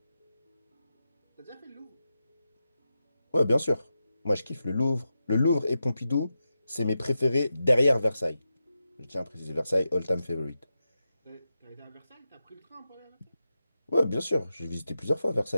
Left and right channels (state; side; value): inverted; both; correlation -0.90